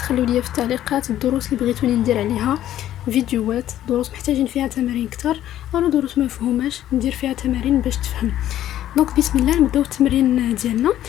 لي في التعليقات الدروس اللي بغيتوني ندير عليها فيديوهات، دروس محتاجين فيها تمارين اكثر او دروس ما مفهوماش ندير فيها تمارين باش تفهم. دونك بسم الله نبداو التمرين ديالنا.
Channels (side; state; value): right; quieter; 12.3 dB